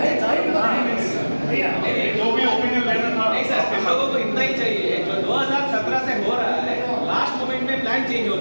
जो भी ओपिनियन लेना था नहीं सर, हम लोगों को इतना ही चाहिए, जो 2017 से हो रहा है, लास्ट मोमेंट में प्लान चेंज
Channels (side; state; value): both; inverted; correlation -1.00